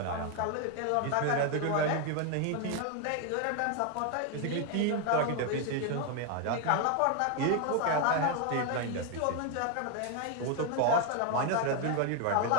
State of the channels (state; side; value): different; both; correlation 0.01